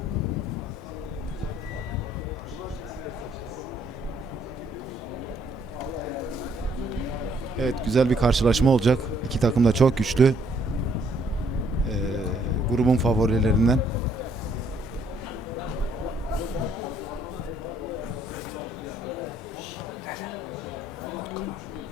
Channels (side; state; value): both; normal; correlation 0.67